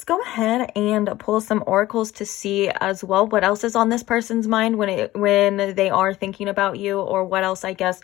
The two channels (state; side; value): quieter; right; 16.5 dB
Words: go ahead and pull some oracles to see as well what else is on this person's mind when they are thinking about you, or what else. I guess